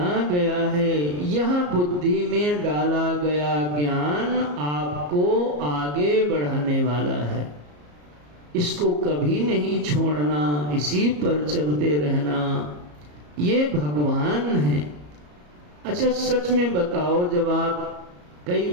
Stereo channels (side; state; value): left; late; 34 ms